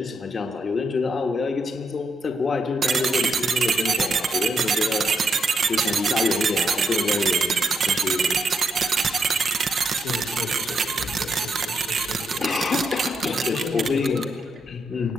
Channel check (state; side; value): normal; both; correlation 0.79